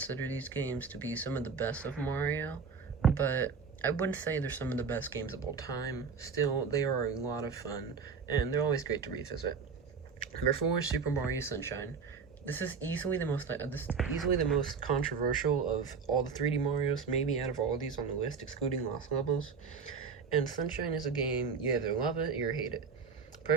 these games to be some of the best of Mario, but I wouldn't say they're some of the best games of all time. Still, they are a lot of fun, and they're always great to revisit. Number 4 is Super Mario Sunshine. This is easily the most controversial of all the 3D Marios, maybe out of all of these on the list, excluding Lost Levels. And Sunshine is a game you either love it or hate it.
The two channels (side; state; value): left; quieter; 5.6 dB